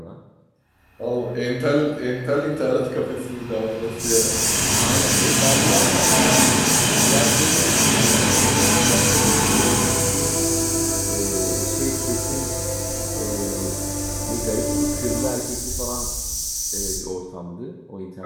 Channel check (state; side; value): identical; both; correlation 1.00